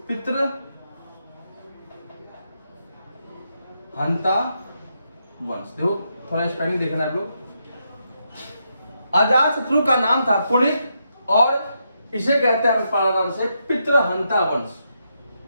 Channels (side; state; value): both; inverted; correlation -0.81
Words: पितृहंता वंश। देखो थोड़ा स्पेलिंग देखना है आप लोग। अजातशत्रु का नाम था कुणिक और इसे कहते हैं नाम से पितृहंता वंश।